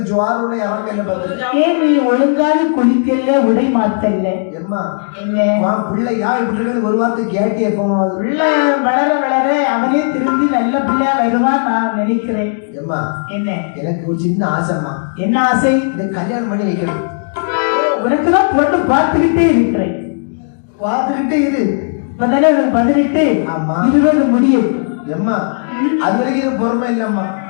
ஜுவாரோட இறங்கல பதில். ஏன் நீ ஒழுங்கான குளிக்கல, உடை மாத்தல? எம்மா என்ன பிள்ளையா இப்படி இருக்குன்னு ஒரு வார்த்தை கேட்டு எப்போது பிள்ளை வளர வளர அவனே திரும்பி நல்ல பிள்ளையா வருவான் நான் நினைக்கிறேன். எம்மா என்ன எனக்கு ஒரு சின்ன ஆசைம்மா. என்ன ஆசை? இந்த கல்யாணம் பண்ணி வைக்கணும். உனக்குதான் பொண்ணு பார்த்துக்கிட்டே இருக்கிறேன். பார்த்துக்கிட்டே இரு. இப்பதானே உனக்கு 18. ஆமா. 20 முடியும். எம்மா அது வரைக்கும் இது பொறுமை இல்லம்மா.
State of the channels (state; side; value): silent; right; digital silence